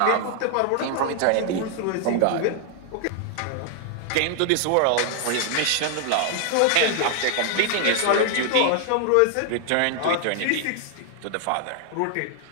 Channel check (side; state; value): both; different; correlation 0.00